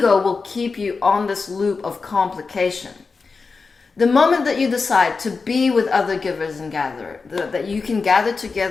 will keep you on this loop of complication. The moment that you decide to be with other givers and gatherers, that you can gather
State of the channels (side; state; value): right; quieter; 4.5 dB